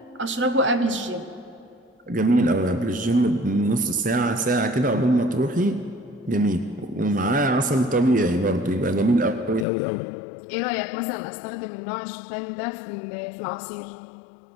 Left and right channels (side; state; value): right; drops out; at 9.7 s